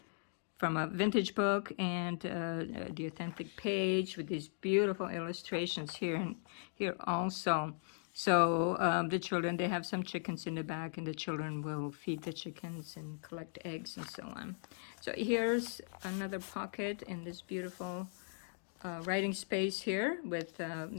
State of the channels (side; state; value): right; silent; digital silence